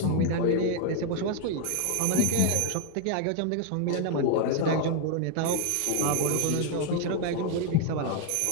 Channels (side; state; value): both; different; correlation 0.01